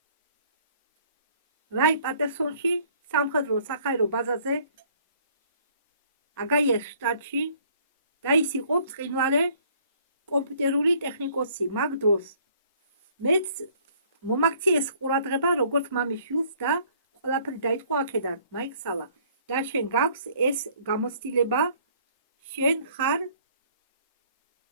რაი პატერსონში სამხედრო სახაერო ბაზაზე აგაიას შტატში და ის იყო ბრწყინვალე კომპიუტერული ტექნიკოსი. მაგ დროს მეც მომაქციეს ყურადღება როგორც მამის შვილს და ყველაფერი დაიწყო აქედან. მაიქსალა და შენ გაქვს ეს გამოცდილება, შენ ხარ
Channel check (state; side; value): inverted; both; correlation -0.59